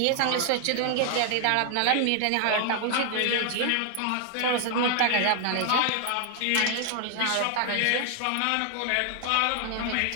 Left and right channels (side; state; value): both; different; correlation 0.00